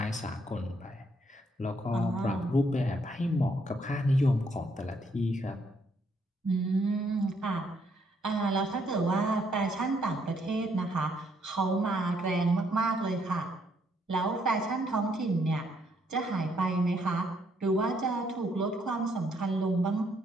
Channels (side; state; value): both; normal; correlation 0.71